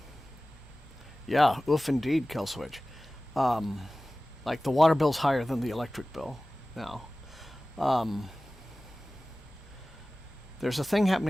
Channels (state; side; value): normal; both; correlation 0.97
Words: Yeah, oof indeed, Kelswitch. Like the water bill's higher than the electric bill now. There's a thing